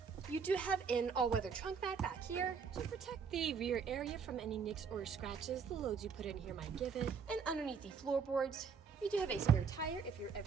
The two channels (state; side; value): quieter; left; 6.0 dB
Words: You do have an all-weather trunk mat back here to protect the rear area from any nicks or scratches the loads you put in here might give it. And underneath the floorboards, you do have a spare tire if you're